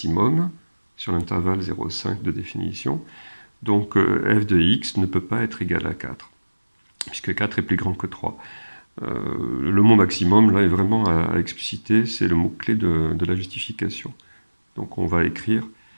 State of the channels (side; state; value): both; inverted; correlation -1.00